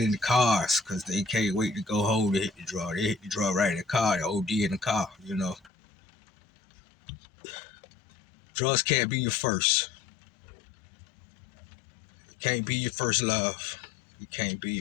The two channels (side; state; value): right; drops out; at 5.7 s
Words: the cars because they can't wait to go home to hit the drug. They hit the drug right in the car, they OD in the car. Drugs can't be your first. It can't be your first love. It can't